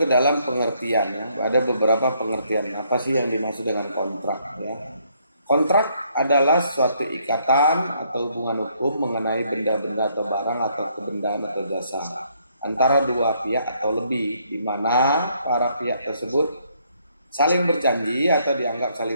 ke dalam pengertian ya. Ada beberapa pengertian apa sih yang dimaksud dengan kontrak ya. Kontrak adalah suatu ikatan atau hubungan hukum mengenai benda-benda atau barang atau kebendaan atau jasa antara dua pihak atau lebih, di mana para pihak tersebut saling berjanji atau dianggap saling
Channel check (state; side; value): inverted; both; correlation -0.70